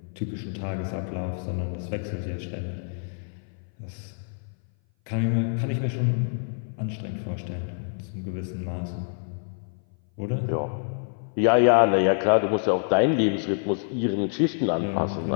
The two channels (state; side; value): silent; right; 58 dB below the other